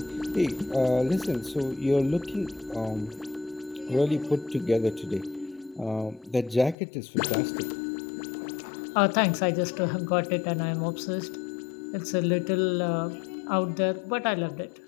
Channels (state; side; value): drops out; right; at 6.8 s